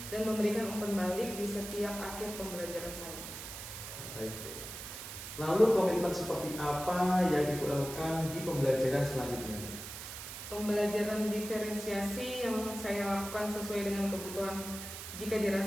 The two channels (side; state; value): right; noise; hiss, 9 dB below the sound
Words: dan memberikan umpan balik di setiap akhir pembelajaran saya. Baik. Lalu komitmen seperti apa yang Ibu lakukan di pembelajaran selanjutnya? Pembelajaran diferensiasi yang saya lakukan sesuai dengan kebutuhan jika